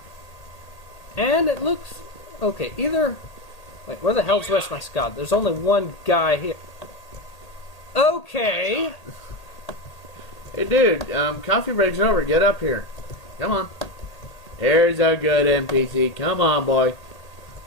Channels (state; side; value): late; right; 1.8 ms